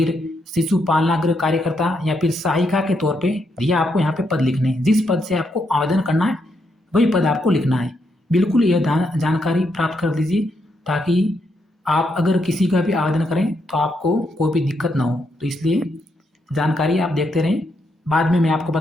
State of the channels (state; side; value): normal; both; correlation 0.79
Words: शिशु पालनागृह कार्यकर्ता या फिर सहायिका के तौर पे, यह आपको यहाँ पे पद लिखने हैं। जिस पद से आपको आवेदन करना है वही पद आपको लिखना है। बिल्कुल यह जानकारी प्राप्त कर लीजिए ताकि आप अगर किसी का भी आवेदन करें तो आपको कोई भी दिक्कत ना हो। तो इसलिए जानकारी आप देखते रहें, बाद में मैं आपको